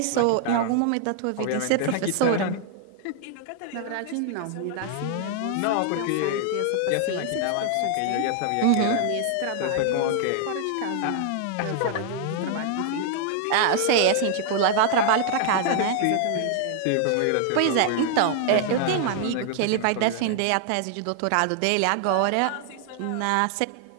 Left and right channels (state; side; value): different; both; correlation 0.00